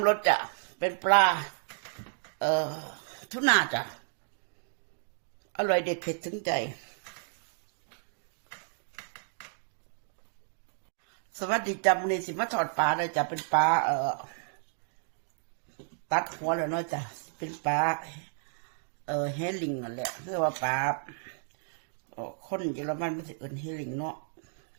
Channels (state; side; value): silent; left; digital silence